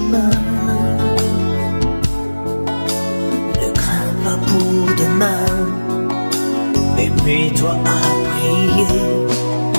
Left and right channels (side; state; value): both; inverted; correlation -1.00